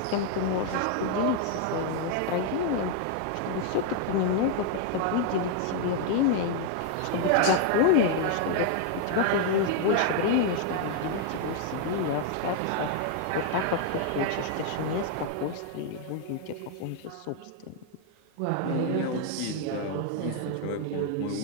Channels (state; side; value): different; both; correlation 0.00